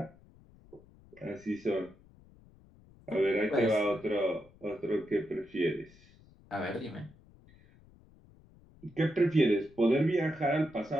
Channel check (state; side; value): noise; left; rumble, 26 dB below the sound